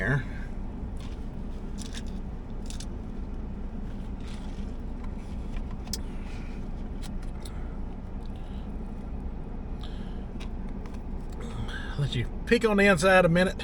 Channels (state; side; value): identical; both; correlation 1.00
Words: Let you peek on the inside a